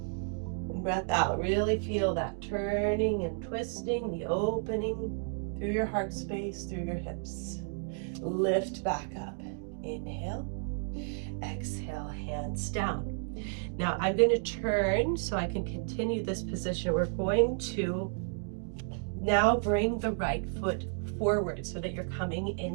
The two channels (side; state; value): left; silent; 56 dB below the other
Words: and breath out. Really feel that turning and twisting, the opening through your heart space, through your hips. Lift back up. Inhale. Exhale, hands down. Now I'm going to turn so I can continue this position. We're going to now bring the right foot forward so that you're coming